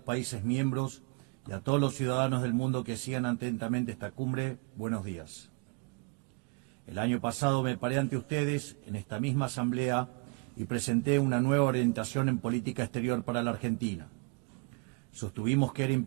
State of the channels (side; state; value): left; quieter; 31.9 dB